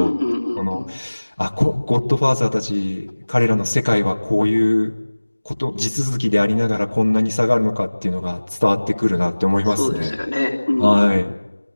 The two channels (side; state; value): both; inverted; correlation -1.00